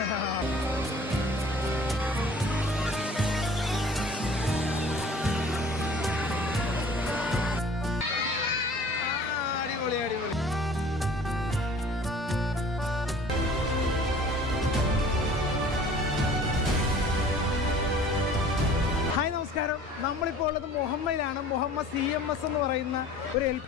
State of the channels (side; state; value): both; normal; correlation 0.48